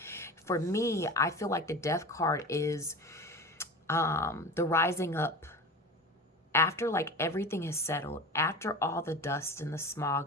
For me, I feel like the Death card is the rising up after like everything is settled, after all the dust and the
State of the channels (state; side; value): normal; both; correlation 0.31